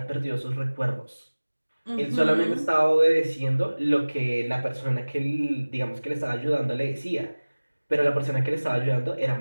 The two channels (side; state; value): both; inverted; correlation -1.00